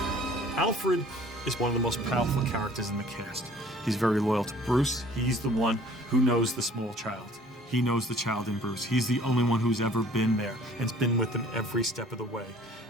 Alfred is one of the most powerful characters in the cast. He's very loyal to Bruce. He's the one who knows the small child. He knows the child in Bruce. He's the only one who's ever been there and's been with him every step of the way.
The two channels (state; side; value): normal; both; correlation 0.53